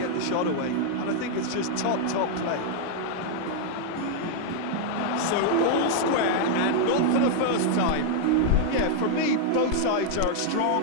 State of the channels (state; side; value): different; both; correlation 0.00